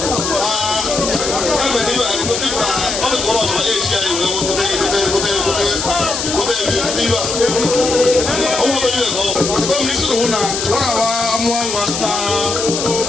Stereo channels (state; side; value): noise; left; hiss, 3 dB below the sound